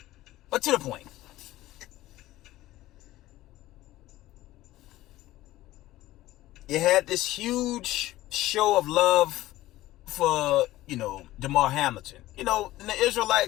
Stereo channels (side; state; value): right; quieter; 16.2 dB